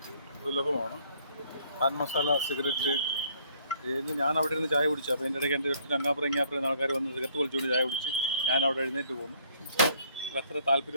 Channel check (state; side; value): inverted; both; correlation -0.63